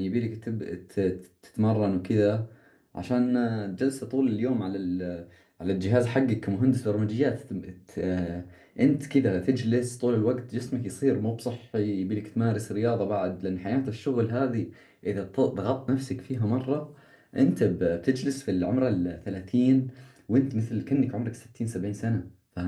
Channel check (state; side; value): identical; both; correlation 1.00